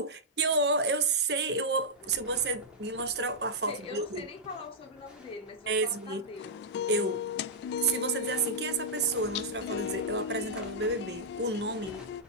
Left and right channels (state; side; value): normal; both; correlation -0.10